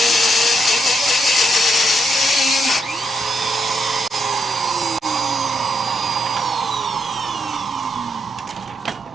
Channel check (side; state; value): both; normal; correlation 0.79